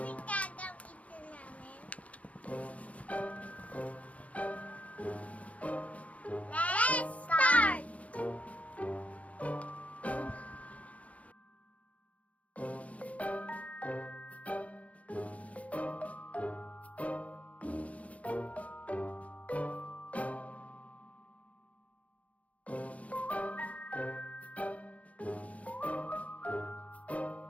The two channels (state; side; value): late; right; 0.066 ms